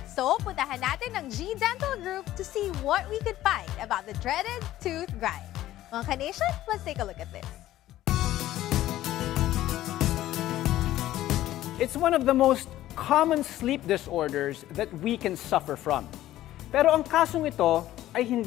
So, puntahan natin ang G Dental Group to see what we could find about the dreaded tooth grind. Mga ka-nation, let's take a look at this. It's one of the most common sleep disorders that we can suffer from. Pero ang kasong ito ay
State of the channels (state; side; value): quieter; right; 14.2 dB